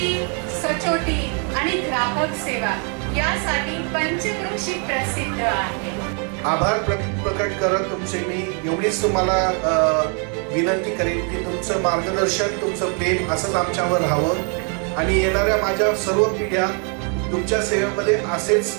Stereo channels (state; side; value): quieter; left; 38.8 dB